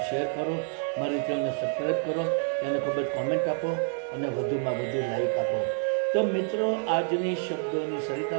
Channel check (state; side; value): silent; left; 59 dB below the other